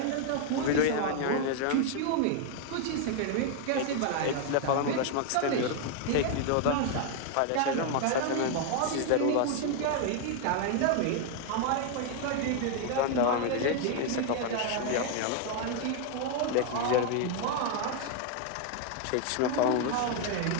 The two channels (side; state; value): both; different; correlation 0.00